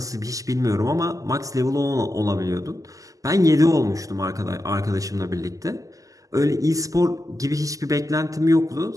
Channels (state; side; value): late; left; 0.17 ms